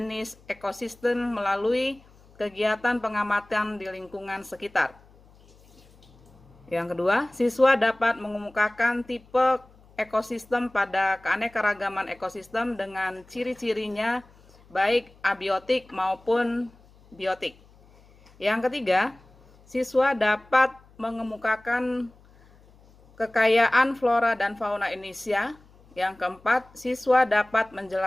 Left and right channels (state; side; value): noise; left; hum, 27 dB below the sound